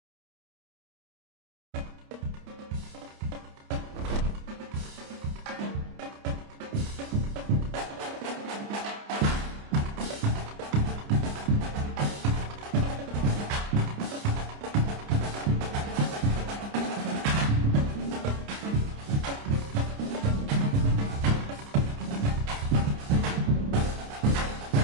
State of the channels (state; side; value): late; left; 29 ms